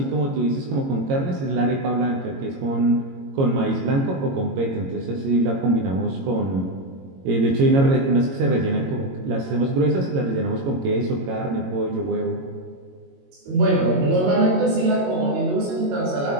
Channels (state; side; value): late; left; 22 ms